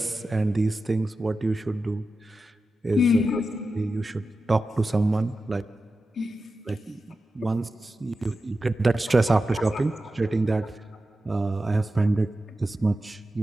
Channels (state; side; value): normal; both; correlation 0.92